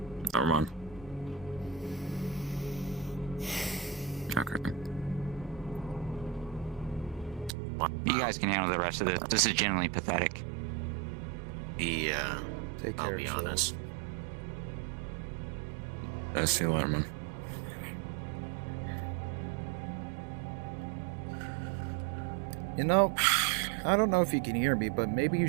Never mind. Okay. You guys can handle the rest of this. This is genuinely pathetic. Yeah. Take I'll care be of honest. I see you later, man. You know, I don't know if you can hear me, but maybe you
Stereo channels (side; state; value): left; drops out; at 7.6 s